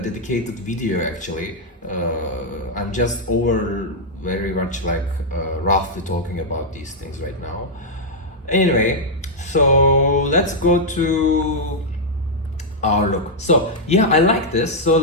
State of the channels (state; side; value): normal; both; correlation -0.05